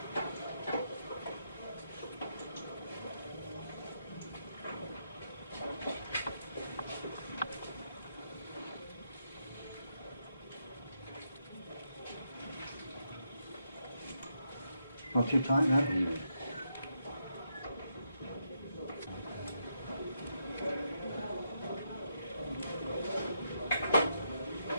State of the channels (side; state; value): both; inverted; correlation -0.80